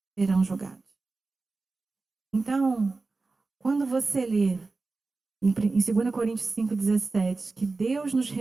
serão julgados. Então, quando você lê em 2 Coríntios 5,17, que Deus nos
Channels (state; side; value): quieter; left; 3.7 dB